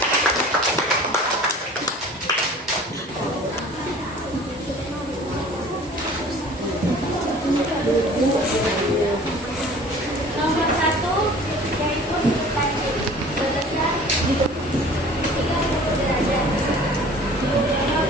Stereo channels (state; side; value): normal; both; correlation 0.46